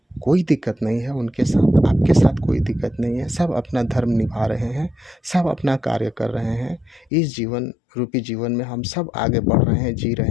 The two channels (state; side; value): drops out; right; at 7.1 s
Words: कोई दिक्कत नहीं है उनके साथ, आपके साथ कोई दिक्कत नहीं है। सब अपना धर्म निभा रहे हैं, सब अपना कार्य कर रहे हैं। इस जीवन रूपी जीवन में हम सब आगे बढ़ रहे हैं, जी